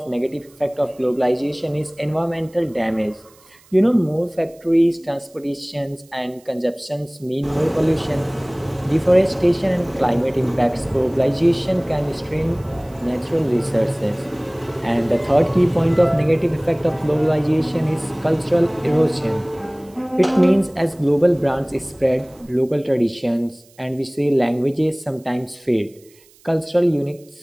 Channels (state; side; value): noise; right; hiss, 29 dB below the sound